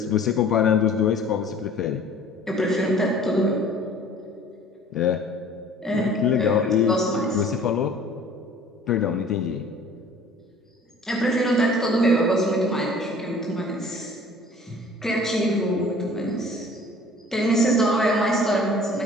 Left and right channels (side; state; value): both; normal; correlation 0.50